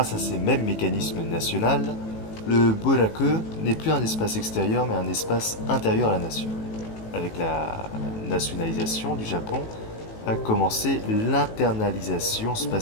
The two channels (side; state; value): right; late; 18 ms